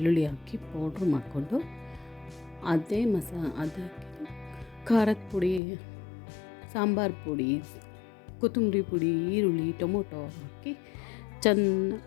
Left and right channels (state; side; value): drops out; right; at 5.6 s